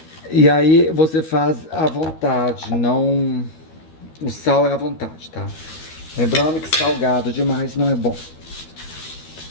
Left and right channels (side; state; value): right; late; 13 ms